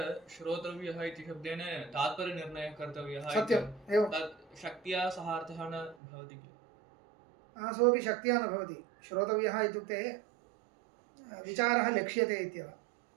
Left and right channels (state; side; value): drops out; left; at 6.0 s